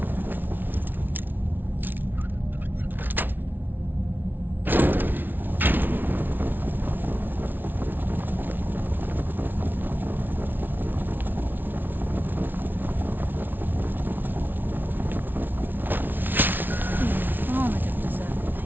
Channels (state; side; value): late; left; 0.092 ms